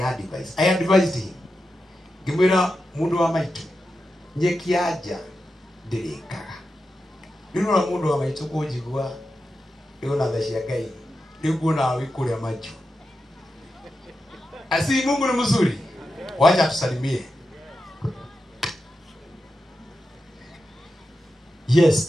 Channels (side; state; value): both; normal; correlation 0.90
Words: I advised him, Gimwira mundu wa maitu nyekiaja ndirikaga. Nino mundu wa maitu kujigwa yona thashia Ngai niguo na wikuria macho. Asi Mungu ni mzuri. Wacha tusalimie.